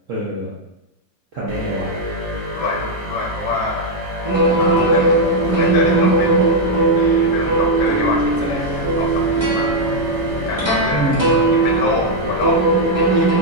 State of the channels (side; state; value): both; normal; correlation -0.01